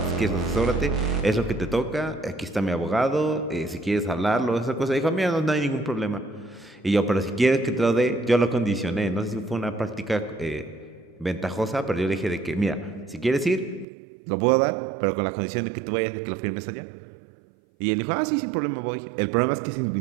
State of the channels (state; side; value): drops out; left; at 13.9 s